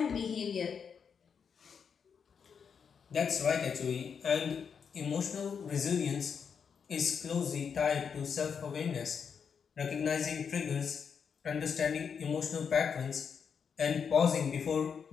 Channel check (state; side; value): quieter; right; 6.6 dB